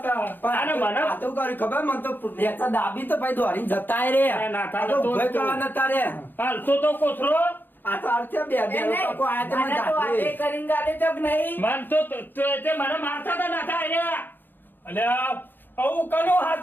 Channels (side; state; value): right; late; 0.093 ms